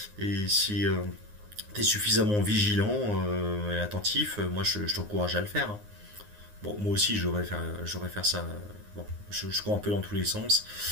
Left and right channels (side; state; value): left; late; 9.6 ms